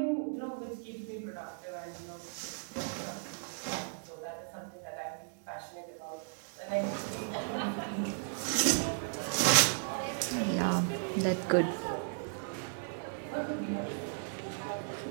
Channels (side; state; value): left; silent; digital silence